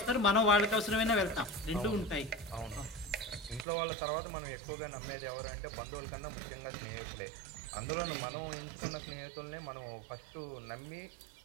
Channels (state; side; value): drops out; left; at 3.7 s